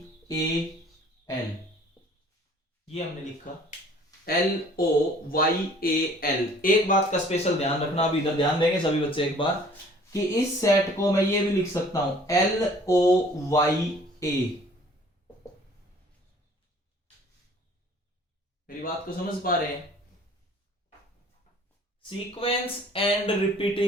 A L, ये हमने लिखा L O Y A L. एक बात का स्पेशल ध्यान रखना, अभी इधर ध्यान देंगे सभी बच्चे एक बार, कि इस सेट को मैं ये भी लिख सकता हूं एल ओ वाई ए। मेरी बात को समझ पा रहे हैं? Sequence and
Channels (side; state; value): both; normal; correlation 0.53